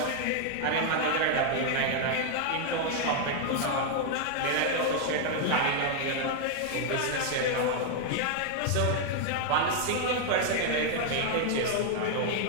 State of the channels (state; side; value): different; both; correlation 0.00